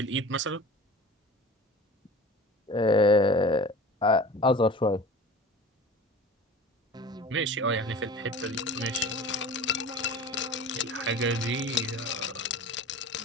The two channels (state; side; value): normal; both; correlation 0.39